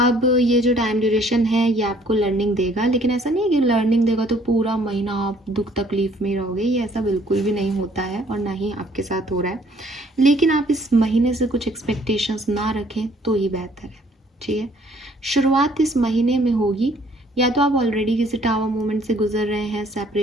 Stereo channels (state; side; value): normal; both; correlation 0.61